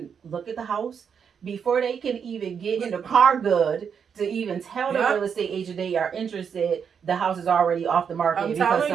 look at the house before they can even get in the car good to even tell the Yep. real estate agent they are interested. The house is already off the market I'm because telling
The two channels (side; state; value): left; quieter; 7.0 dB